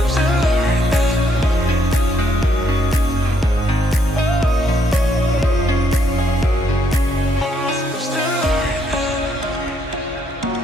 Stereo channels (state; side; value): normal; both; correlation 0.73